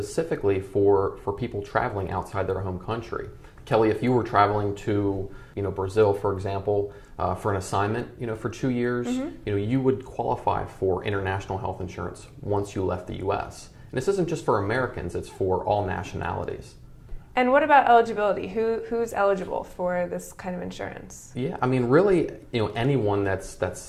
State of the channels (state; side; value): identical; both; correlation 1.00